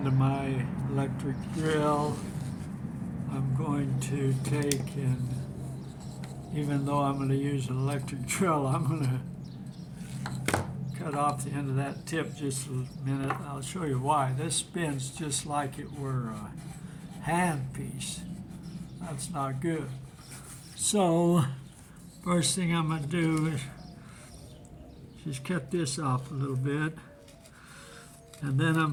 my electric drill. I'm going to take and, even though I'm going to use an electric drill, I'm going to cut off the end of that tip just a minute. I'll show you why. This spins just like it were a hand piece. That's not good. So first thing I'm going to do is just cut this off a little bit, and then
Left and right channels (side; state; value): both; identical; correlation 1.00